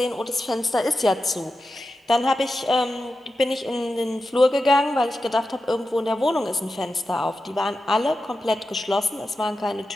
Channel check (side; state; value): both; normal; correlation 0.91